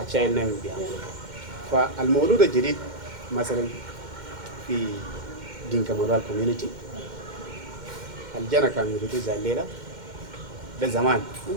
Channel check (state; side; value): late; left; 2.1 ms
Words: الشايل نامي بيعملوا. فالمولود الجديد مثلا في دينكا مورال كوميونيتي الجنة كانوا يريدوا زي الليلة ده زمان